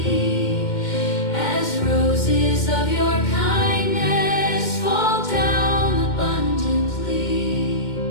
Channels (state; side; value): late; right; 2.1 ms